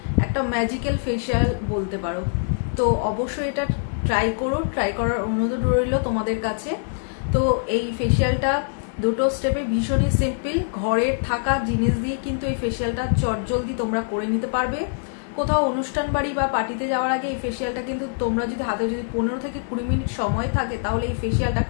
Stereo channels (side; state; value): right; silent; digital silence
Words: একটা ম্যাজিক্যাল ফেসিয়াল বলতে পারো। তো অবশ্যই এটা ট্রাই করো, ট্রাই করার অনুরোধ রইল তোমাদের কাছে। তো এই ফেসিয়ালটা দুটো স্টেপে ভীষণই সিম্পল, ঘরের থাকা জিনিস দিয়ে কিন্তু এই ফেসিয়ালটা চটজলদি তোমরা করে নিতে পারবে। কোথাও অনুষ্ঠান বাড়ি বা পার্টিতে যাওয়ার আগে এই ফেসিয়ালটা কিন্তু তোমরা যদি হাতে যদি 15 থেকে 20 মিনিট সময় থাকে তাহলে এই ফেসিয়ালটা